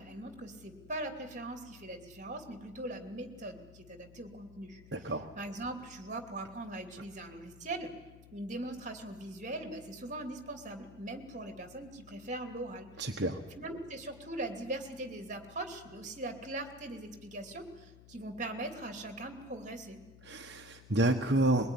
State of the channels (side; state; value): left; noise; hum, 18 dB below the sound